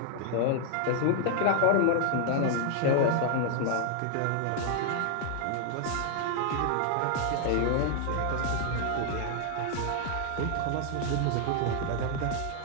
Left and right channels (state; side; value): different; both; correlation -0.01